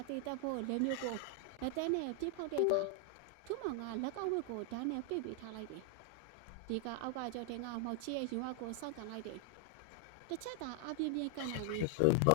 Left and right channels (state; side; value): different; both; correlation 0.00